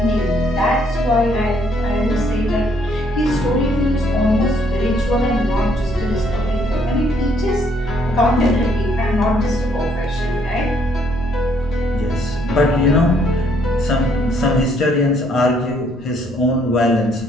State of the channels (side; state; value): both; normal; correlation 0.67